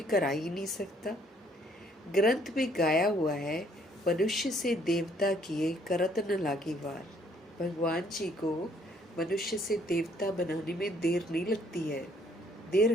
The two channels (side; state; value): both; normal; correlation 0.64